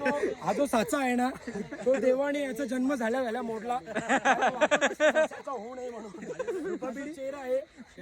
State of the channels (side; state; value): both; identical; correlation 1.00